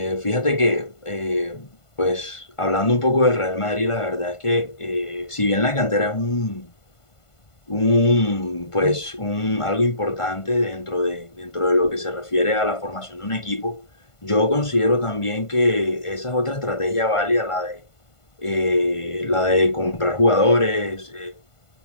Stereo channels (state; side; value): late; right; 1.5 ms